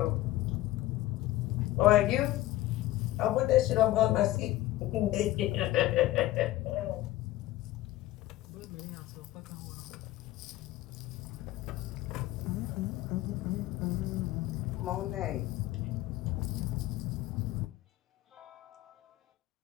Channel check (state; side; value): quieter; right; 16.0 dB